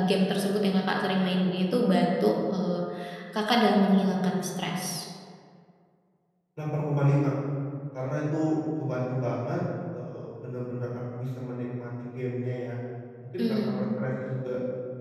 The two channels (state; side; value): identical; both; correlation 1.00